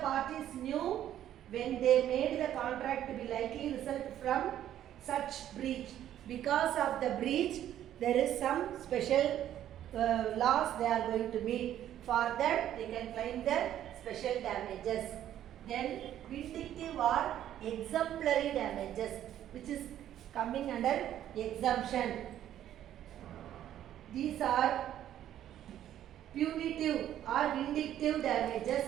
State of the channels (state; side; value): quieter; left; 11.5 dB